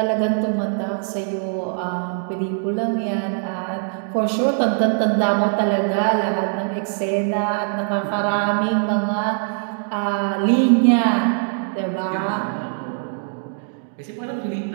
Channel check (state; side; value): silent; left; digital silence